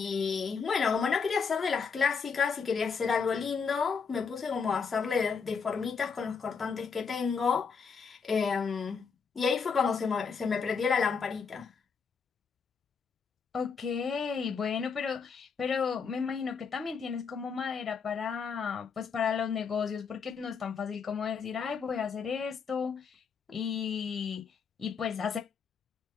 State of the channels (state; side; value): quieter; right; 5.8 dB